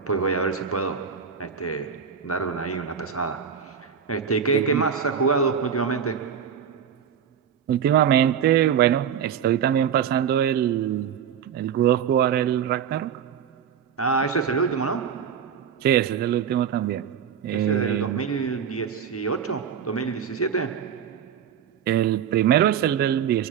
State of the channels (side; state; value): left; quieter; 7.9 dB